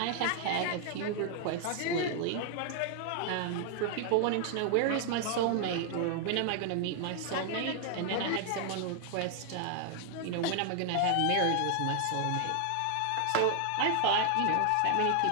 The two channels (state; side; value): different; both; correlation 0.00